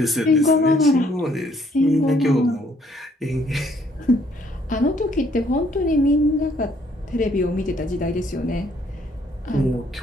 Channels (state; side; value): normal; both; correlation 0.65